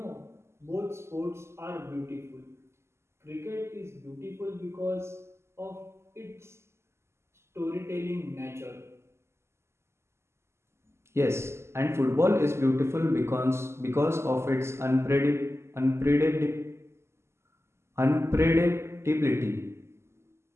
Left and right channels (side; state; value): left; late; 0.13 ms